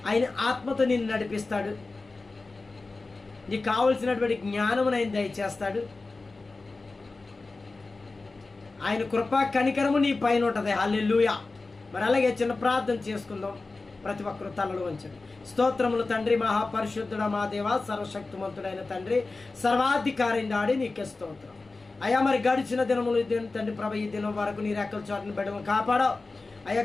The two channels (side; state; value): right; quieter; 3.6 dB